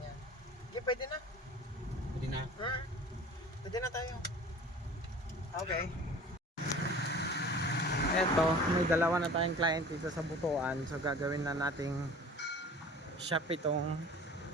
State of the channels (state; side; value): normal; both; correlation 0.43